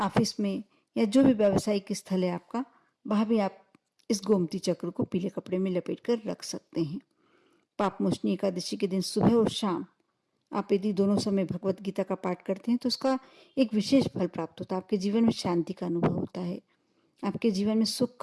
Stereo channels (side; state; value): both; identical; correlation 1.00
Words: में, या जो भी व्यावसायिक स्थल है आपका, वहाँ भी आप इस गोमती चक्र को पीले कपड़े में लपेट कर रख सकते हैं। पापमोचनी एकादशी के दिन सुबह और शाम आप यदि दोनों समय भगवत गीता का पाठ करते हैं तो उसका एक विशेष फल प्राप्त होता है। आपके जीवन में शांति का अनुभव होता है, आपके जीवन में सुख